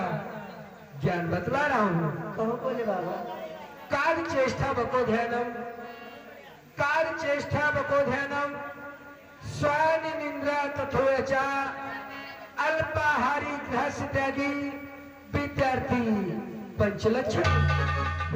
ज्ञान बतला रहा हूँ। कहो भोले बाबा। कार्य चेष्टा बको ध्यानम, कार्य चेष्टा बको ध्यानम, स्वानि निंद्रा तथोयचा, अल्पाहारी ग्रहस्य त्यागी विद्यार्थी पंचलक्षण।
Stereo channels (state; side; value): identical; both; correlation 1.00